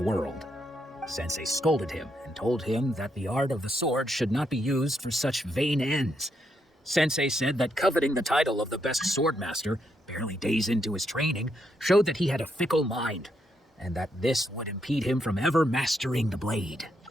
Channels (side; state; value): both; normal; correlation 0.79